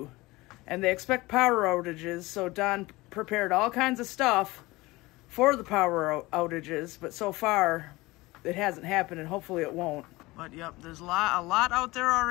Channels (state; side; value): quieter; right; 20.9 dB